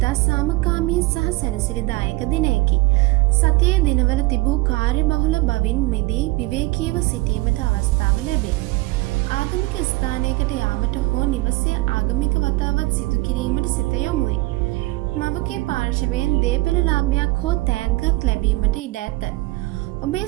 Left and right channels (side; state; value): left; quieter; 21.6 dB